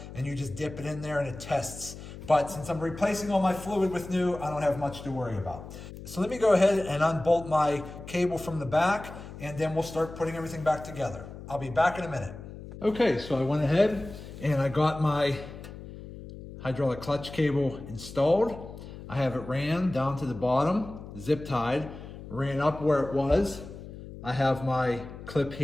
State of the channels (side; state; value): left; noise; hum, 13 dB below the sound